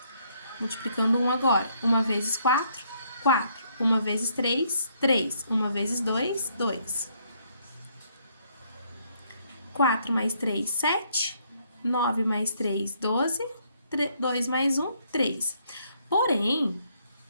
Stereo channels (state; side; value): inverted; both; correlation -0.70